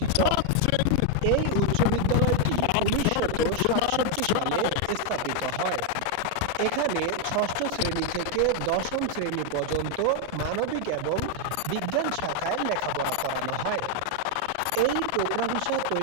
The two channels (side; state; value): both; different; correlation 0.01